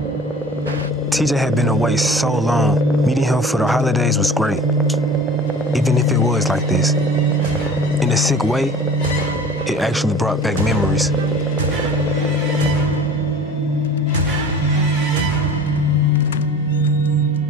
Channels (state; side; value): normal; both; correlation 0.43